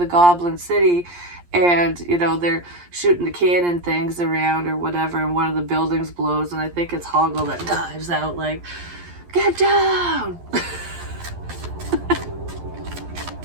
Goblin City and, they're shooting the cannon things around or whatever, and one of the buildings blows, and I think it's Hoggle that dives out like, get down!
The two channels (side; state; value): left; late; 11 ms